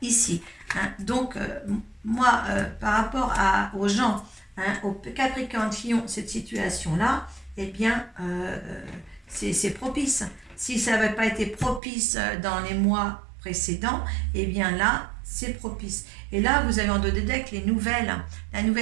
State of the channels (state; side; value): drops out; left; at 11.8 s